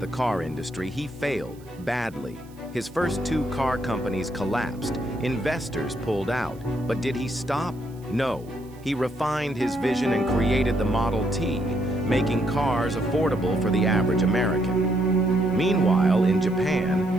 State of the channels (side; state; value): right; noise; hiss, 28 dB below the sound